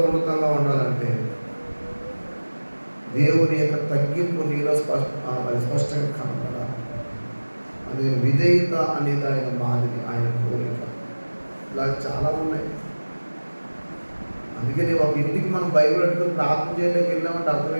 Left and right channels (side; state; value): both; inverted; correlation -1.00